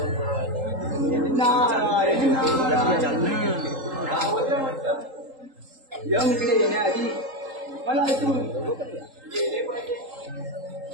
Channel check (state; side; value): late; left; 3.8 ms